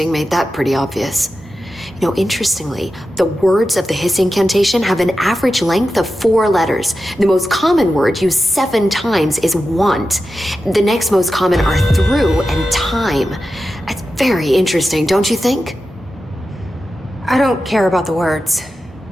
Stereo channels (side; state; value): both; normal; correlation 0.91